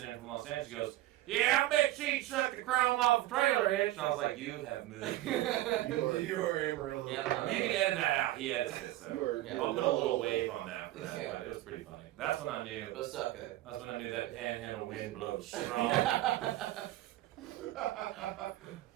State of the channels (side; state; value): left; quieter; 15.8 dB